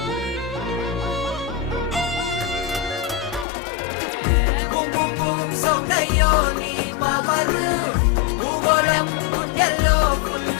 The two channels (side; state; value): right; drops out; at 3.5 s